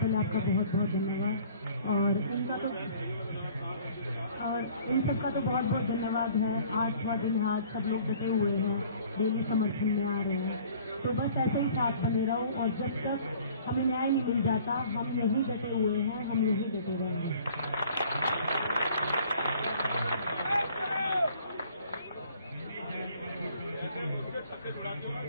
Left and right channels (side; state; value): both; inverted; correlation -0.53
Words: आपका बहुत बहुत धन्यवाद, और इन सबका तो बहुत बहुत धन्यवाद है। 8वां दिन है, आज सब लोग डटे हुए हैं, डेली समर्थन में आ रहे हैं, तो बस ऐसे ही साथ बने रहो, और जब तक हमें न्याय नहीं मिल जाता हम यही डटे हुए हैं, हम यही डटे रहेंगे।